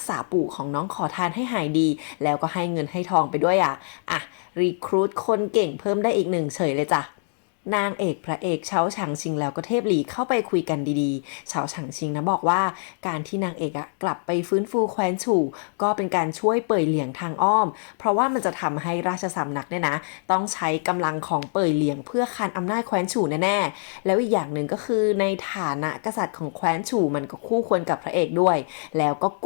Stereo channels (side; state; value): right; silent; digital silence